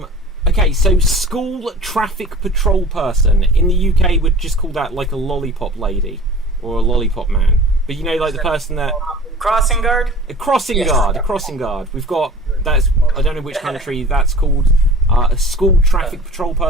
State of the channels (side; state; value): both; normal; correlation 0.42